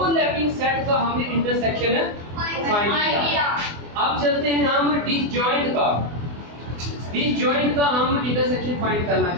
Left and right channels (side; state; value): left; late; 24 ms